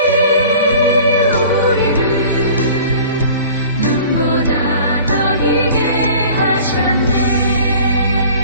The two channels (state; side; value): inverted; both; correlation -0.45